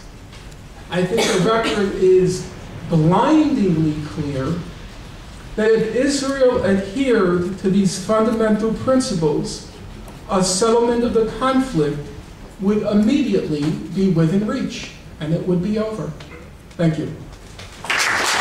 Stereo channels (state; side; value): identical; both; correlation 1.00